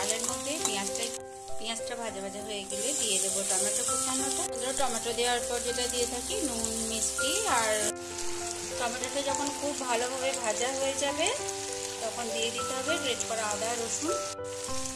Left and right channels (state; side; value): identical; both; correlation 1.00